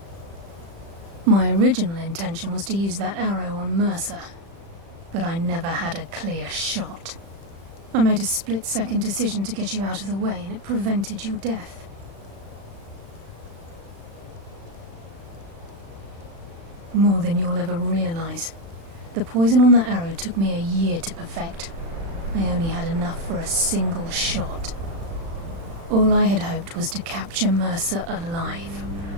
My original intention was to use that arrow on Mercer, but I never had a clear shot. I made a split-second decision to get you out of the way, and it prevented your death. More than you'll ever realize. The poison on that arrow took me a year to perfect. I only had enough for a single shot. All I had hoped was to capture Mercer alive.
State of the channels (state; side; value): late; left; 36 ms